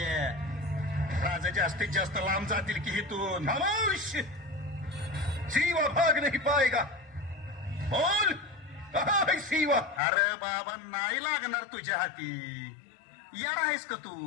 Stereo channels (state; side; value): drops out; right; at 10.0 s